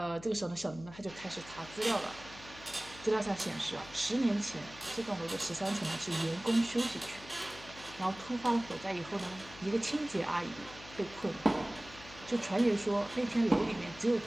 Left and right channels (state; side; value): noise; left; hum, 18 dB below the sound